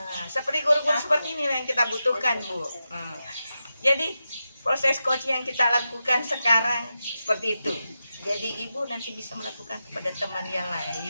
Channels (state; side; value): inverted; both; correlation -0.90